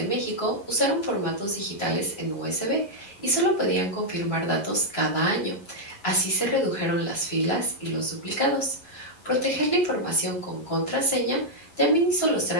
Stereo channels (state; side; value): late; right; 11 ms